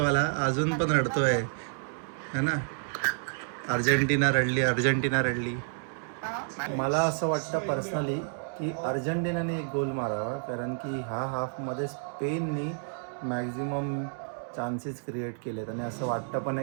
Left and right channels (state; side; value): silent; left; digital silence